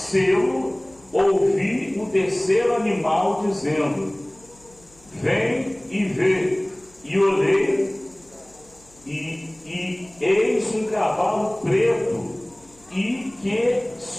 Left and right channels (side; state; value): left; noise; hum, 29 dB below the sound